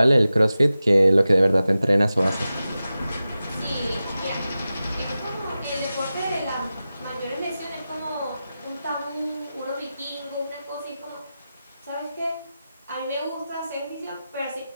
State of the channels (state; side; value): inverted; both; correlation -0.94